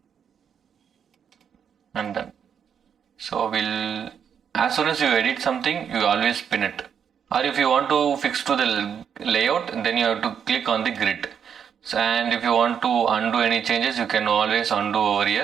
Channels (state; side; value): quieter; left; 7.8 dB